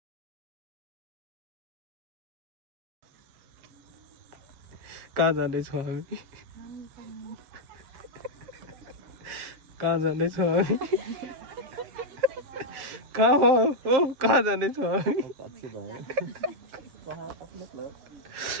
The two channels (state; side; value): late; left; 7.6 ms